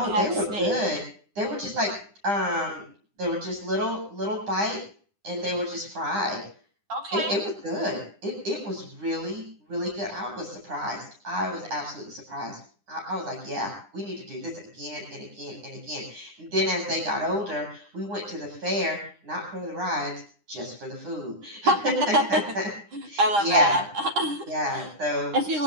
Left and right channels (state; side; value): late; left; 9.9 ms